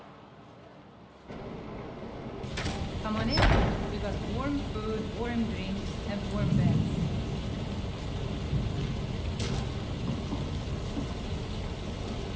Come on in. We got warm food, warm drinks, and warm beds.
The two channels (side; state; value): both; identical; correlation 1.00